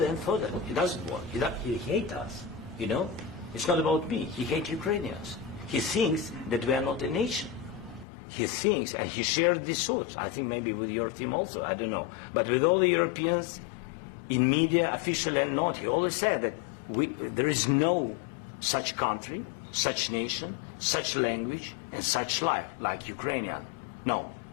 and further. He doesn't want. He hates us, you know? It's not about me. He hates Ukrainians. He thinks that we are not a nation. He thinks, and he shared these thoughts, I think maybe with your team also, I don't know. But with all the Europeans, in media, officially and not, he always said that there is no such country, such nation, such language, and such life like Ukrainian. No,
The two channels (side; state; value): right; drops out; at 8.1 s